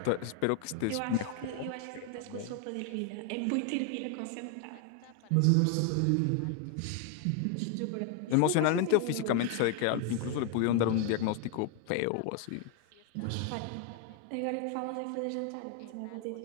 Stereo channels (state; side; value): different; both; correlation 0.00